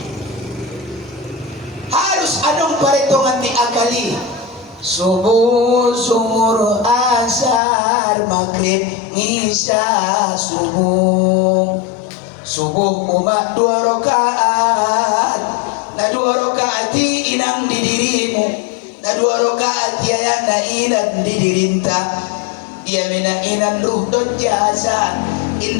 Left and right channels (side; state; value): right; drops out; at 7.6 s